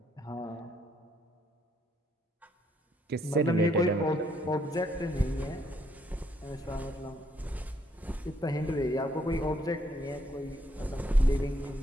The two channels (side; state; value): both; normal; correlation 0.71